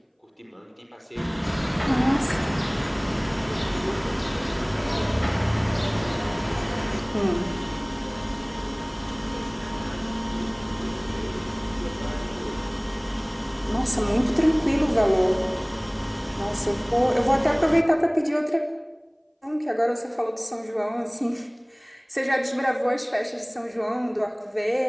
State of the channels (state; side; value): identical; both; correlation 1.00